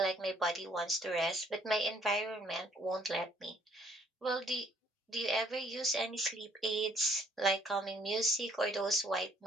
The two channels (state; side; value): normal; both; correlation 0.64